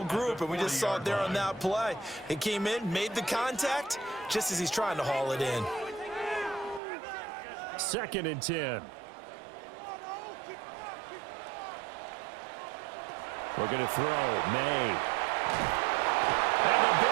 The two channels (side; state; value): left; drops out; at 6.8 s